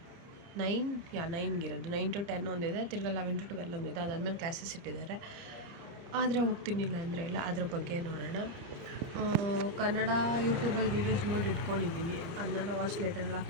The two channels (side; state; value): left; late; 30 ms